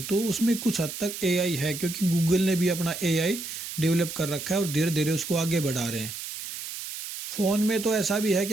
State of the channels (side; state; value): right; noise; hiss, 8 dB below the sound